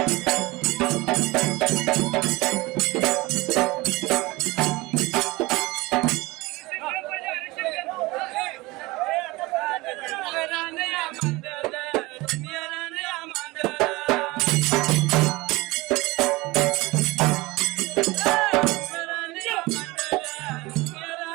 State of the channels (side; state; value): left; quieter; 22.0 dB